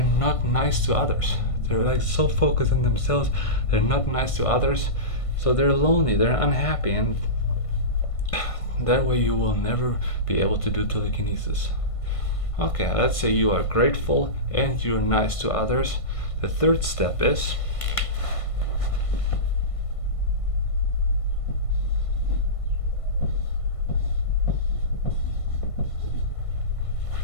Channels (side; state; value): right; late; 1.5 ms